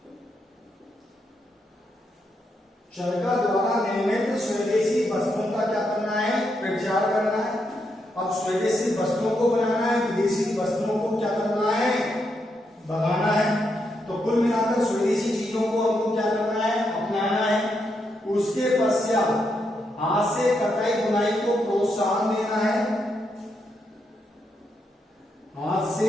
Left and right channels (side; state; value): both; normal; correlation 0.81